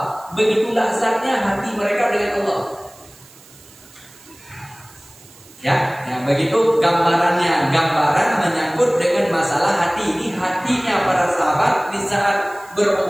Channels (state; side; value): noise; right; hiss, 24 dB below the sound